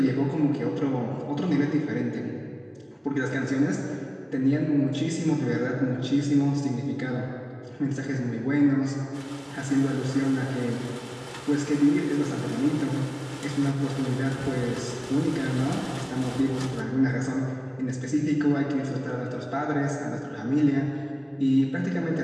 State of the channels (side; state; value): both; identical; correlation 1.00